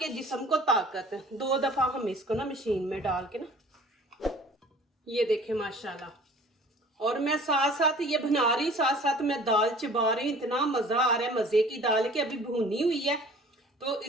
जिस्म को ताकत। 2 दफा हम इसको ना मशीन में डाल के ना, ये देखें माशाल्लाह। और मैं साथ साथ ये बना रही, साथ साथ मैं दाल चबा रही। इतना मजा आ रहा है, मजे की दाल की अभी भुनी हुई है तो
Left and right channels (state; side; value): normal; both; correlation 0.48